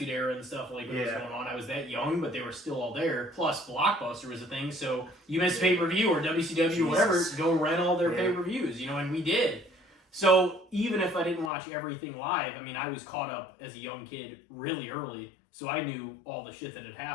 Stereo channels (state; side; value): drops out; right; at 11.5 s